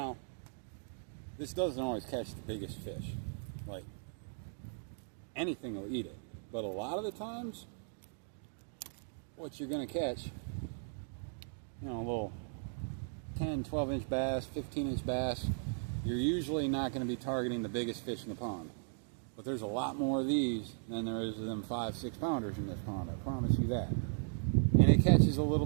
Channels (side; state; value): left; silent; digital silence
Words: this doesn't always catch the biggest fish. Like, anything will eat it. But a lot of the times, what you're going to catch, you know, a little 10, 12-inch bass, 15-inch bass, you're usually not going to be targeting the biggest fish in the pond. But there's a lot more of these than there is of them 5-6 pounders in this pond, I promise you that. And it catches a little